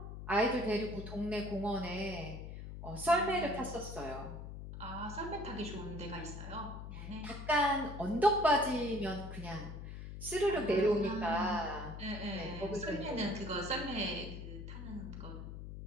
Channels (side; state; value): left; noise; hum, 9 dB below the sound